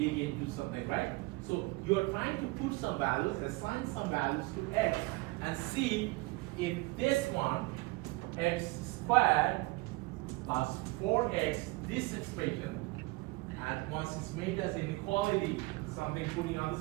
into something, right? So you are trying to put some values, assign some values to x, and see if this one, x squared plus 4x, this expression, and once it's made as inequality, something putting on the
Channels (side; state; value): left; quieter; 23.0 dB